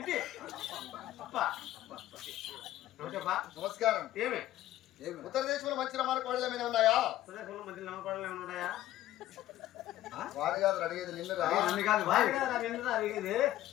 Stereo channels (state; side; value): quieter; right; 14.1 dB